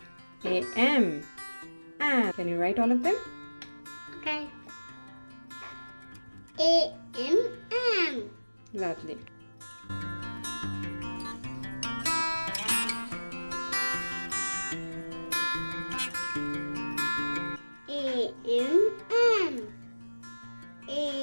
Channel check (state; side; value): inverted; both; correlation -1.00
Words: AM. Am. Can you write all of them? Okay. A. M. M. Lovely. A. M. M.